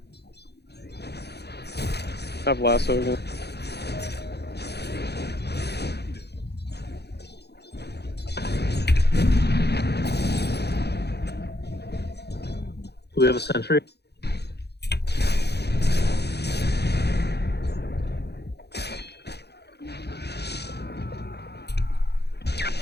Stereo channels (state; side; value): late; right; 0.48 ms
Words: I have lasso again. Do we have a sentry?